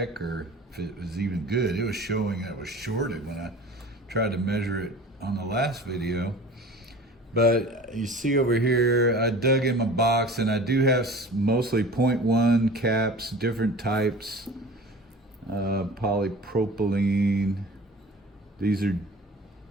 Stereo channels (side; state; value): both; normal; correlation 0.41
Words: or if it was even good. It was showing that it was shorted when I tried to measure it on the last video. But you see over here, I dug in my box, and I do have mostly 0.1 caps, different types, polypropylene. These are